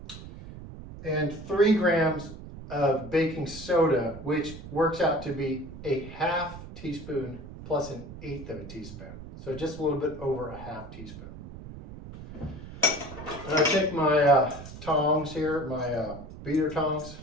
And 3 grams of baking soda, which works out to be a ½ teaspoon plus an 1/8 of a teaspoon. So just a little bit over a ½ teaspoon. And I take my tongs here, my beater tongs,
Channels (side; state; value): right; noise; rumble, 13 dB below the sound